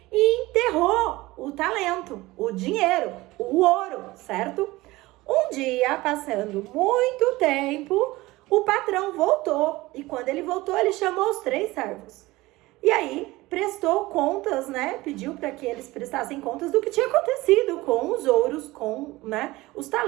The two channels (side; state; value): left; quieter; 19.7 dB